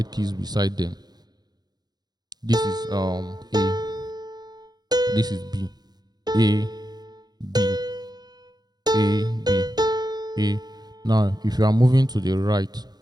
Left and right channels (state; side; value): late; left; 0.19 ms